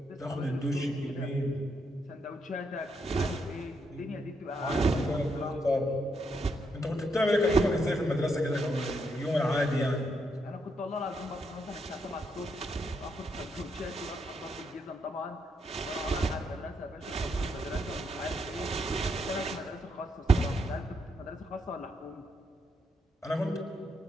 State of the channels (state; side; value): normal; both; correlation 0.78